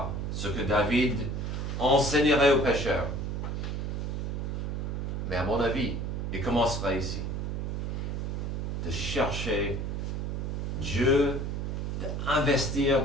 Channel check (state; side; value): noise; right; hum, 2 dB below the sound